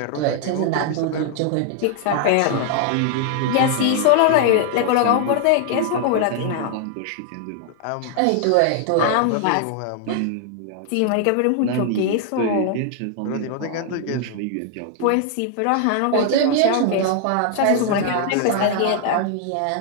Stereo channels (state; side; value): different; both; correlation 0.00